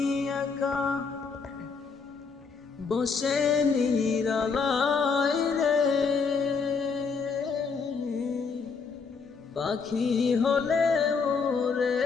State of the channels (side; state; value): right; quieter; 5.2 dB